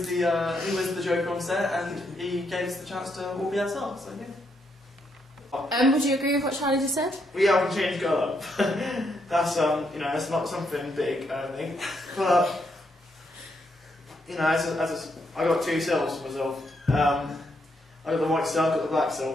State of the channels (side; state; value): both; normal; correlation 0.77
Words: the Joker on set, and he gave us the chance to all be ourselves. So yeah. Would you agree with what Charlie just said? We haven't changed colour. That's that's not something big, I don't think. But I got two selves for myself. I got the white self, got the black